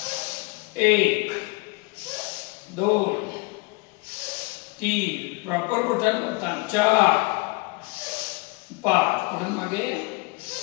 1 2 3 प्रॉपर बोटांवर ताण. 4 5 पुढे मागे.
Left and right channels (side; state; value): right; quieter; 27.4 dB